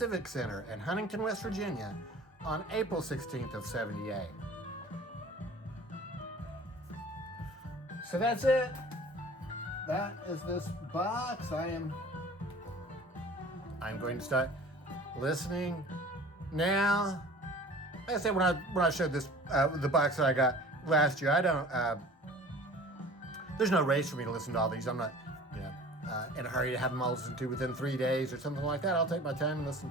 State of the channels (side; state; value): both; normal; correlation 0.44